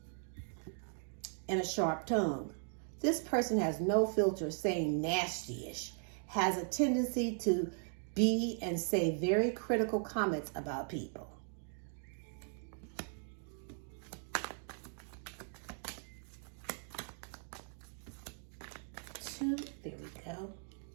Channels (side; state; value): left; silent; 52 dB below the other